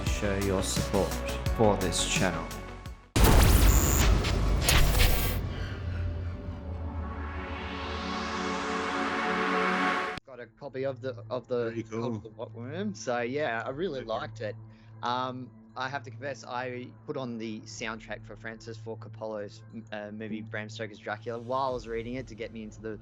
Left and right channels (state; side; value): identical; both; correlation 1.00